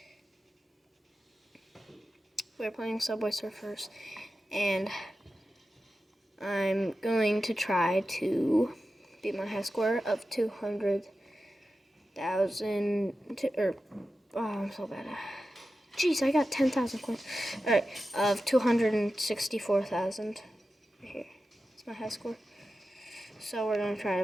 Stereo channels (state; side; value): normal; both; correlation 0.92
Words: we're playing Subway Surfers, and I'm going to try to beat my high score of 200,000, I'm so bad. Jeez, I got 10,000 coins. Alright, of 264,000. Here, it's my high score. So we're going to try